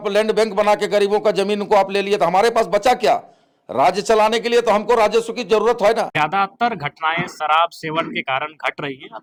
लैंड बैंक बना के गरीबों का जमीन को आप ले लिए तो हमारे पास बचा क्या। राज्य चलाने के लिए तो हमको राजस्व की जरूरत है ना। ज्यादातर घटनाएं शराब सेवन के कारण घट रही है,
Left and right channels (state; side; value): identical; both; correlation 1.00